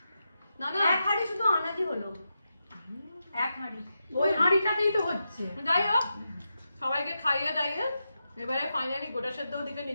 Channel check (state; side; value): inverted; both; correlation -0.88